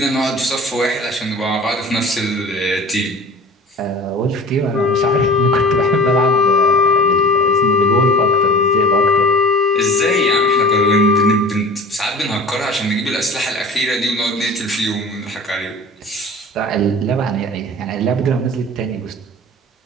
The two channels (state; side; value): normal; both; correlation 0.40